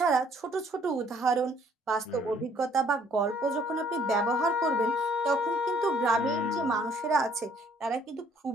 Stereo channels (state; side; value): normal; both; correlation 0.61